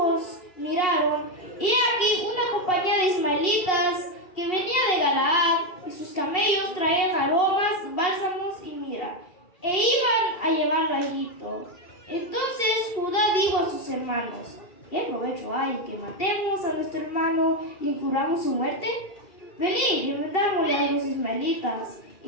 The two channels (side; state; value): right; late; 2.7 ms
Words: miraron, y aquí una compañía de ismaelitas que venía de Galaad, y sus camellos traían aromas, bálsamos y mirra, e iban a llevarlo a Egipto. Entonces Judá dijo sus hermanos. ¿Qué provecho hay que matemos a nuestro hermano y encubramos su muerte? Venid y vendámosle a los ismaelitas,